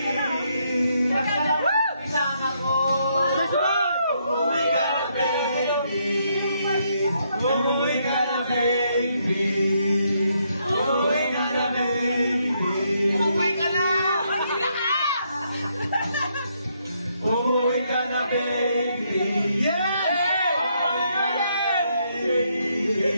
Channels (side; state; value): both; inverted; correlation -0.75